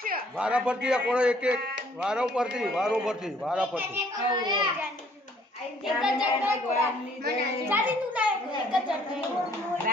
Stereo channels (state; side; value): normal; both; correlation 0.61